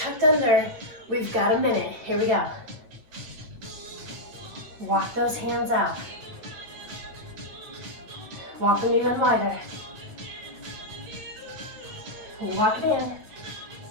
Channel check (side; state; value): left; late; 9.0 ms